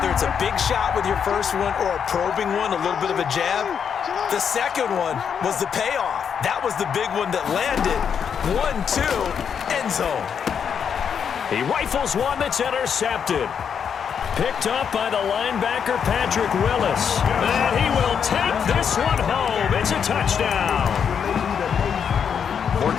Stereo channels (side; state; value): right; quieter; 7.4 dB